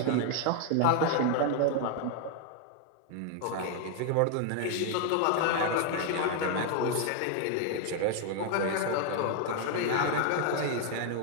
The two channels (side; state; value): both; different; correlation 0.01